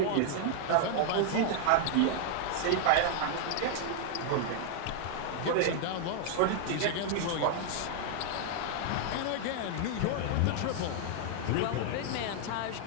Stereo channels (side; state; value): both; different; correlation -0.01